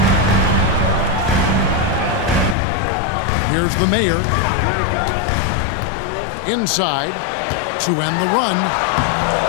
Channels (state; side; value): drops out; right; at 2.6 s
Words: Here's the Mayor. Inside to end the run.